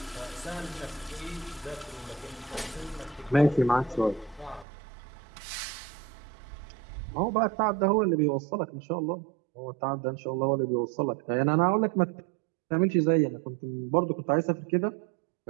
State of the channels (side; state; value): left; drops out; at 4.7 s